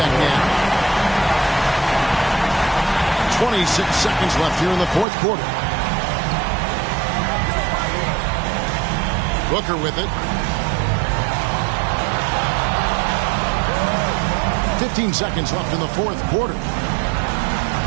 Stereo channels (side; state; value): left; drops out; at 5.1 s